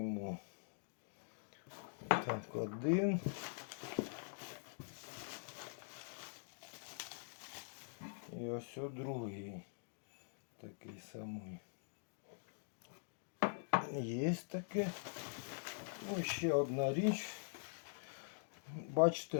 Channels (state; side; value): silent; right; digital silence